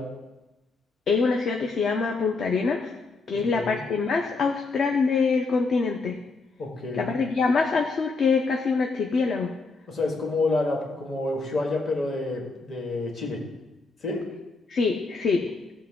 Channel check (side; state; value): right; quieter; 3.9 dB